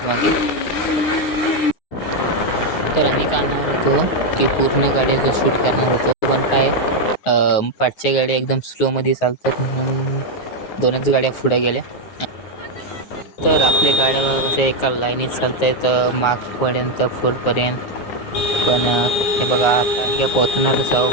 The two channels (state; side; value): late; right; 9.7 ms